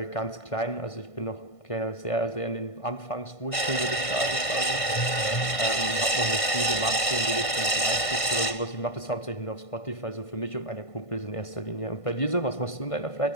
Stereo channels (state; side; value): late; right; 1.5 ms